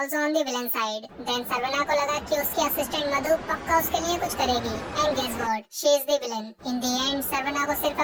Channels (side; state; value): both; identical; correlation 1.00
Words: on the villain side. Then Sarvana को लगा कि उसकी assistant मधु पक्का उसके लिए कुछ करेगी. And guess what? She is the villain. In the end, Sarvana को सिर्फ